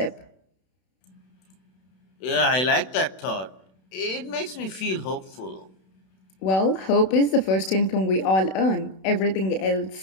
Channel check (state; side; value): late; right; 32 ms